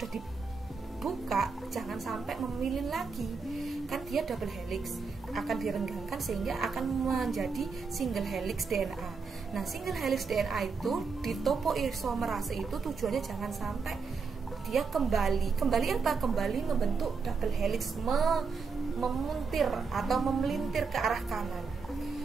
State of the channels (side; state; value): left; quieter; 5.0 dB